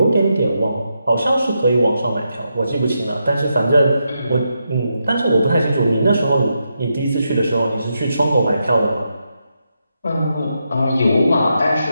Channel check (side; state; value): both; inverted; correlation -0.84